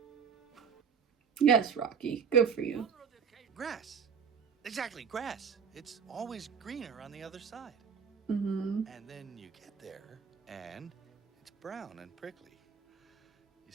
Yes, Rocky. Good for you. Grass. Exactly, grass. It's always greener on the other side. Mm-hmm. And then you get there, and it's brown and prickly. You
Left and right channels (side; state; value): left; quieter; 6.6 dB